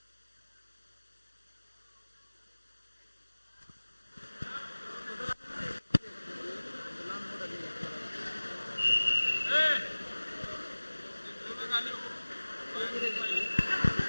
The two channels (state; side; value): inverted; both; correlation -1.00